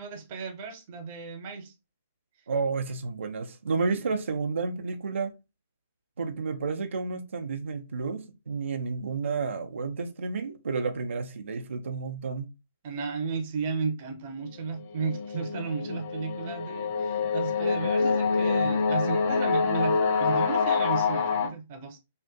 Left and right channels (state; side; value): inverted; both; correlation -0.71